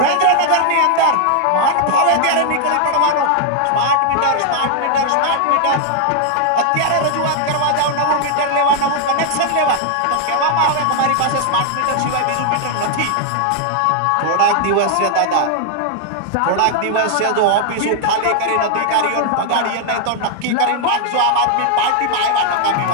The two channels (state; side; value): different; both; correlation 0.00